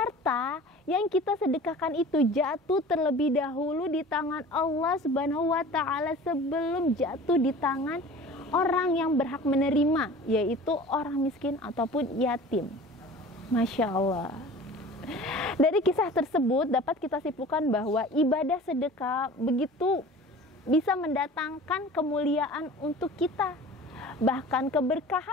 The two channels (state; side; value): normal; both; correlation 0.41